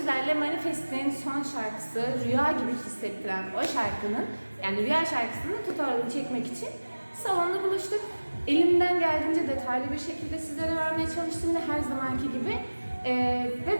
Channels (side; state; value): both; inverted; correlation -1.00